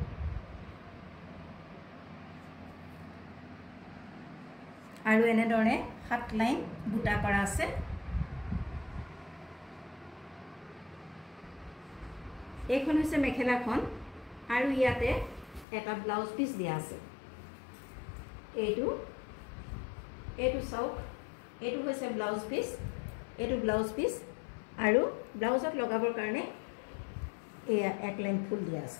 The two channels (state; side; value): drops out; right; at 15.7 s